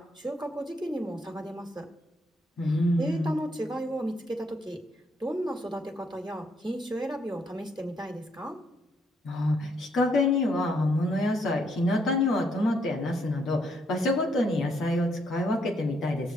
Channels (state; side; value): normal; both; correlation 0.73